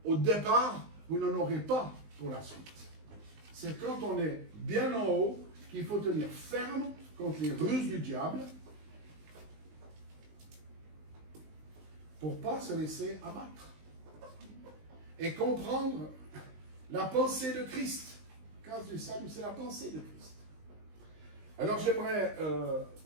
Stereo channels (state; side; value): late; left; 19 ms